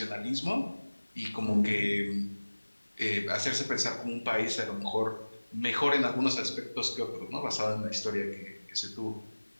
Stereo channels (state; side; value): inverted; both; correlation -1.00